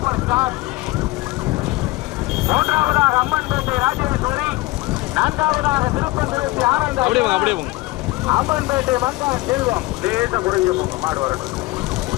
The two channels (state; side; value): quieter; right; 20.8 dB